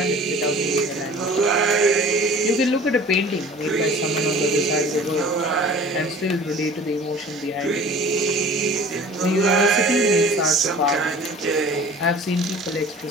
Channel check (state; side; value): normal; both; correlation 0.44